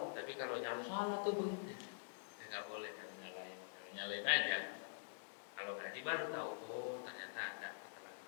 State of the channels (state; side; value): silent; right; digital silence